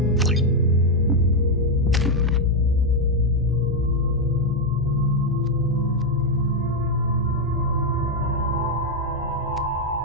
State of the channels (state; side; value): normal; both; correlation 0.02